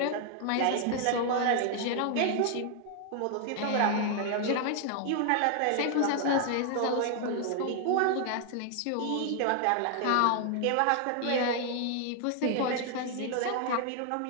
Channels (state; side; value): different; both; correlation 0.00